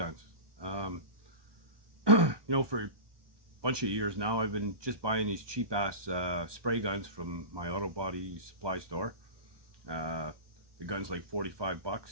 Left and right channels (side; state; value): left; late; 1.2 ms